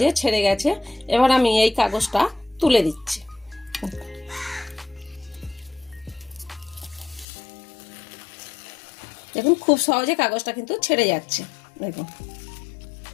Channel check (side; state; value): right; drops out; at 7.2 s